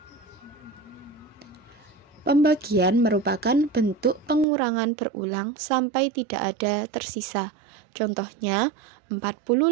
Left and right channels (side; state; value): left; drops out; at 4.5 s